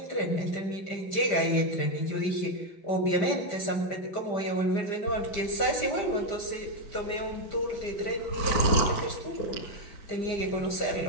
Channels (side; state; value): right; late; 5.0 ms